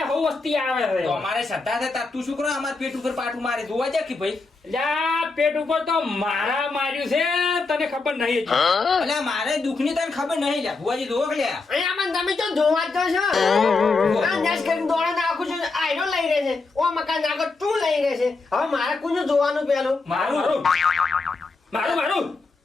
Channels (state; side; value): quieter; right; 3.9 dB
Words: હવ વસ્તી આવે છે તો અમારે શ્રદ્ધા છે તાર તું શું કરો અમાર પેટ ઉપર પાટું મારે જોવા જા કે ભાઈ એટલે આ પેટ ઉપર તો મારા માર્યું છે તને ખબર નહીં અલ્યા મારે દુઃખની તને ખબર નહીં લ્યા ભુવાજી જોવો કે લ્યા અહીંયા મને તમે તો જોવા જ તો છો આ નેસ કરીને દોડા નાખું છું આયરો લઈ રહે છે ઓ મકાન નાખો તું લઈ રહે છે હવે મારે કોનું જોવાનું પેલું મારું